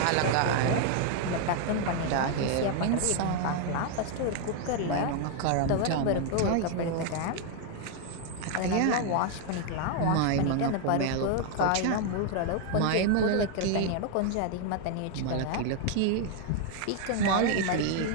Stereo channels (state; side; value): different; both; correlation 0.00